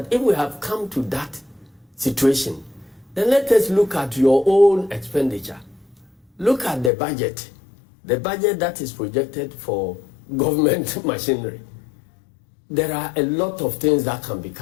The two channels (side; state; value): right; drops out; at 6.9 s